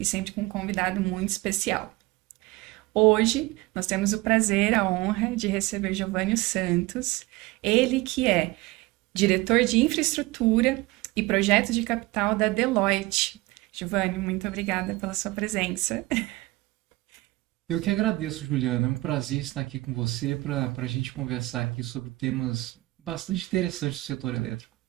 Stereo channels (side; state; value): left; quieter; 20.7 dB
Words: sempre com um convidado muito especial. Hoje nós temos o prazer, a honra de receber Giovânio Santos, ele que é diretor de infraestrutura e projetos de capital da Deloitte. Giovânio, muito obrigada pela sua presença. Eu que agradeço, Juliana. É um prazer estar aqui com você para a gente conversar aqui sobre temas bastante interessantes do setor elétrico.